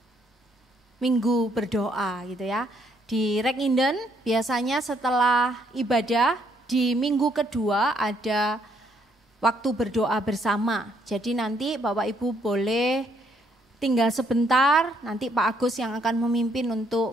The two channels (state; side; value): normal; both; correlation 0.70